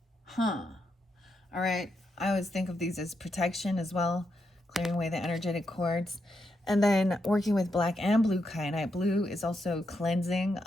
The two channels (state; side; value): normal; both; correlation 0.82